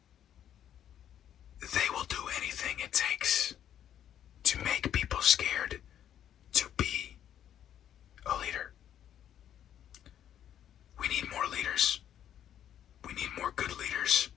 they will do anything it takes to make people scared to be a leader. We need more leaders. We need more good leaders.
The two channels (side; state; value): right; quieter; 10.3 dB